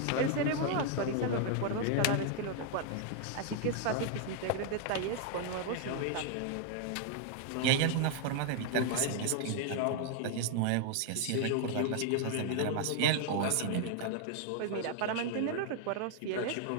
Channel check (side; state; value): both; different; correlation 0.00